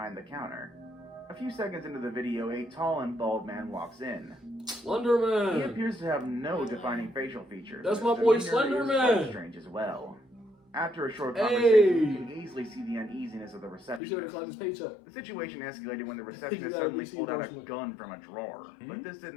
the counter. A few seconds into the video, a tall and bald man walks in. Slender He Man. appears to have no defining facial features. That's and my his boy demeanor Slender is Man. quite strange as well. After a short Hey. conversation, you can easily see the uneasiness of the You receptionist. should have collected his paycheck. The situation escalated when the You receptionist gotta suddenly receive pulled out a endorsement. gun from a drawer, but this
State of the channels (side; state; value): right; drops out; at 14.0 s